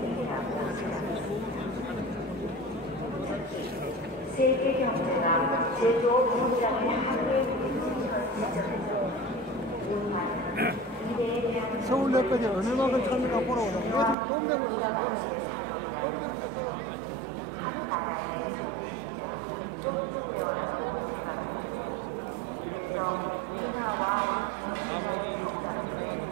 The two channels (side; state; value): left; drops out; at 14.2 s